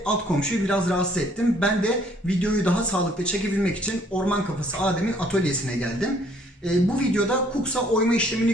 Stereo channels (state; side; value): normal; both; correlation 0.62